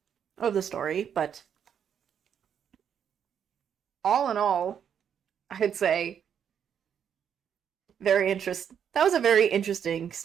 the story. But all in all, I'd say that was a very interesting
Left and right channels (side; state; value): left; quieter; 8.3 dB